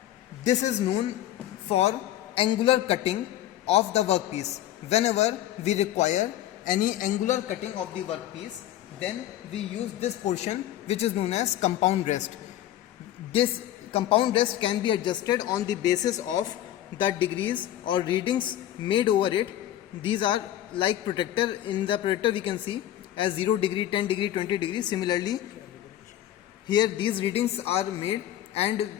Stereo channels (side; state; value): right; quieter; 12.7 dB